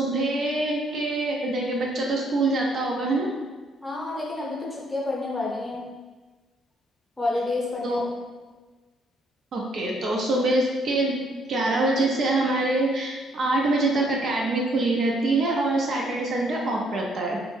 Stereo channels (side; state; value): both; normal; correlation 0.67